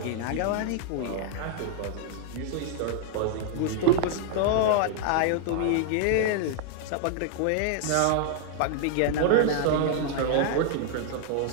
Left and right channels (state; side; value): different; both; correlation 0.00